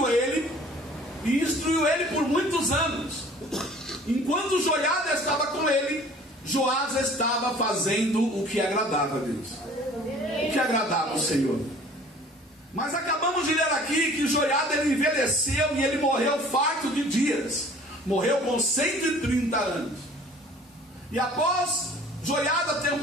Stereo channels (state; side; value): normal; both; correlation 0.50